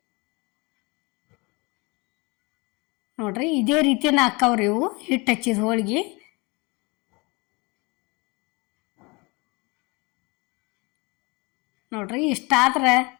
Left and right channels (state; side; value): quieter; right; 27.1 dB